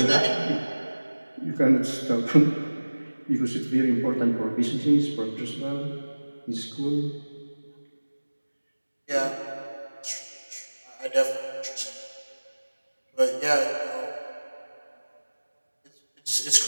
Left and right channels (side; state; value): both; inverted; correlation -1.00